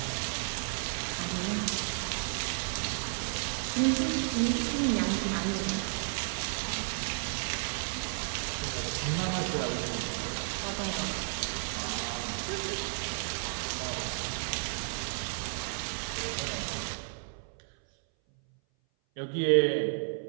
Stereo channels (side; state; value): left; silent; 56 dB below the other